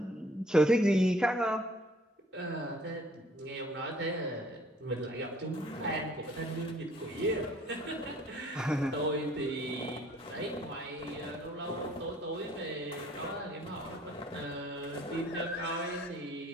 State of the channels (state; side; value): normal; both; correlation 0.58